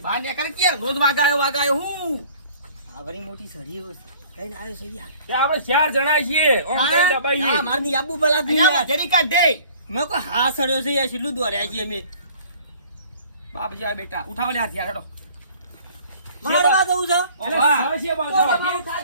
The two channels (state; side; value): inverted; both; correlation -0.51